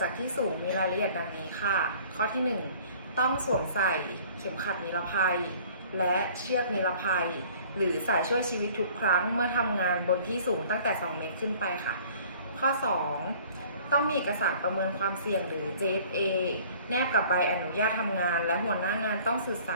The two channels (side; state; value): both; inverted; correlation -0.51